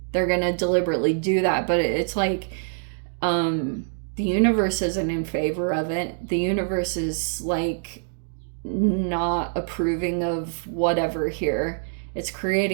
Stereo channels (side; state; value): left; silent; digital silence